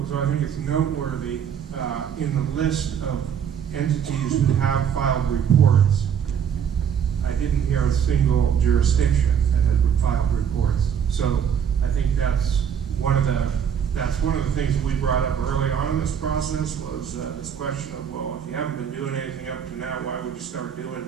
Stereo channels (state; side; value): quieter; left; 8.1 dB